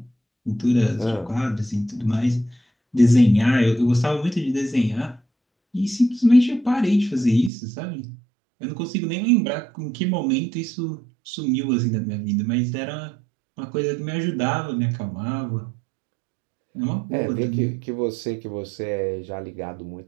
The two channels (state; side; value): drops out; left; at 7.5 s